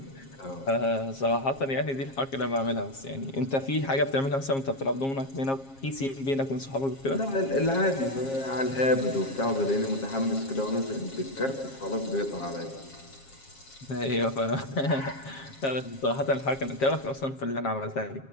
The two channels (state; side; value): late; right; 7.4 ms